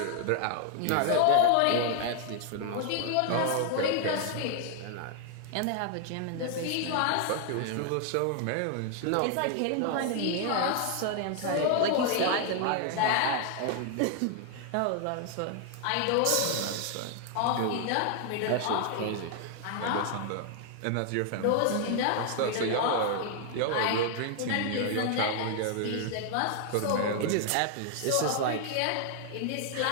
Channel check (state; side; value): different; both; correlation 0.00